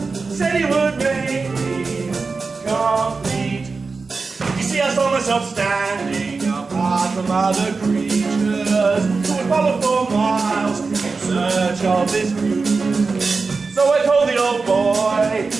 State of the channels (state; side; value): quieter; left; 4.3 dB